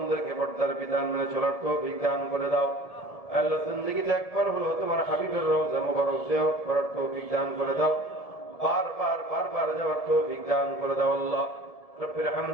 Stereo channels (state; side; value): late; right; 1.7 ms